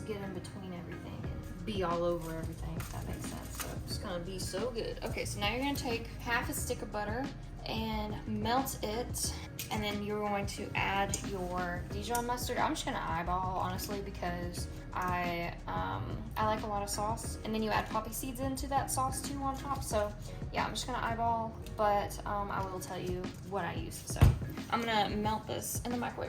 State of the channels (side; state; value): both; identical; correlation 1.00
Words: get in between everything and be all over everything, if that makes sense. So it's gonna be so good. Okay, so now you're gonna take half a stick of butter and melt it, and then you're going to add your Dijon mustard. I'm just gonna eyeball, honestly, because I like a lot of sauce, and then you add poppy seeds into that sauce too on top. So yeah, I'm just gonna eyeball, but I will tell you what I use. So I'm gonna melt this in the